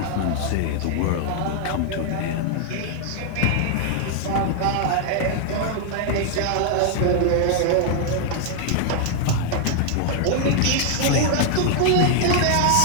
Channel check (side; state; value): both; different; correlation 0.00